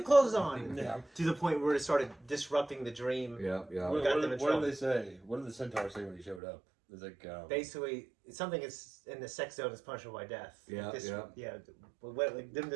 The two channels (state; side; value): drops out; left; at 6.4 s